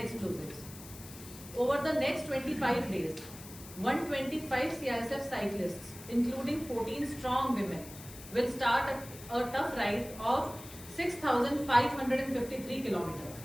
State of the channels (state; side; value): noise; left; hiss, 16 dB below the sound